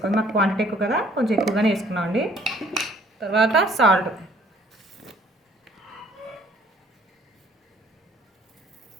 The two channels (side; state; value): both; normal; correlation 0.59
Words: మాకు క్వాంటిటీ ఎక్కువ కదా, కొంచెం ఎక్కువగానే వేసుకున్నామండి. తర్వాత సాల్ట్,